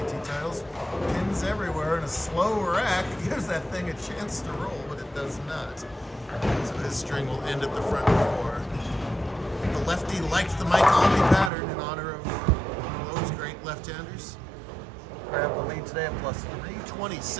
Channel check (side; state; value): left; drops out; at 11.5 s